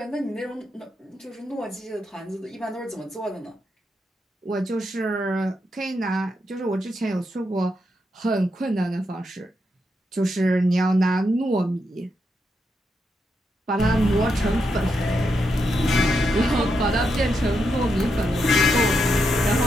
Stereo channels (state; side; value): normal; both; correlation 0.83